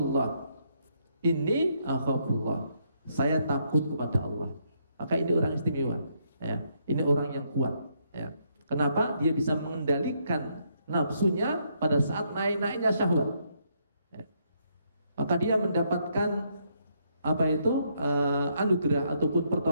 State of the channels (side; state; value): both; inverted; correlation -0.74